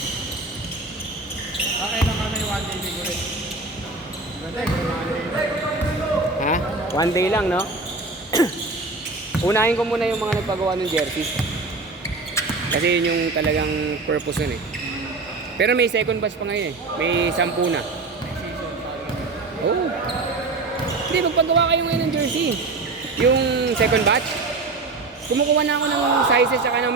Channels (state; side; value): quieter; left; 3.6 dB